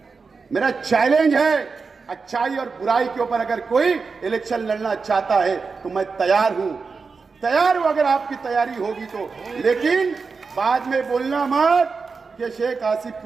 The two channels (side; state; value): left; quieter; 4.8 dB